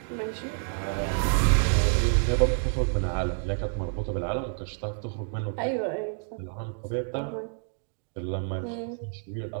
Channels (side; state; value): left; silent; digital silence